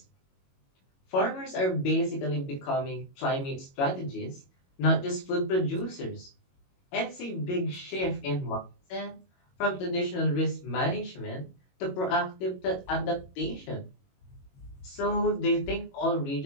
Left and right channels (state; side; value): late; right; 22 ms